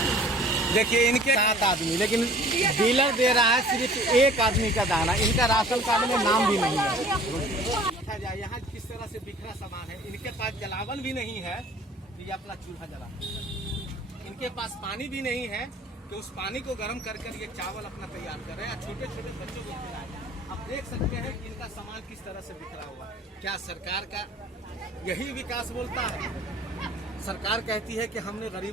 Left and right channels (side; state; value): both; normal; correlation 0.49